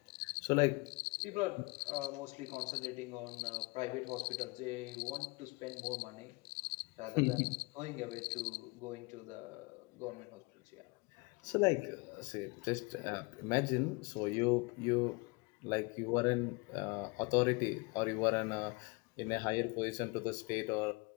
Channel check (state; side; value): quieter; right; 27.3 dB